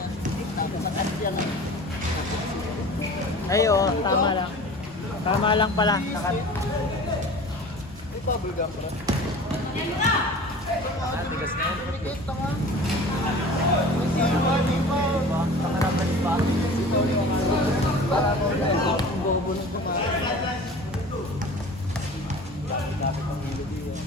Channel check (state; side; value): normal; both; correlation 0.40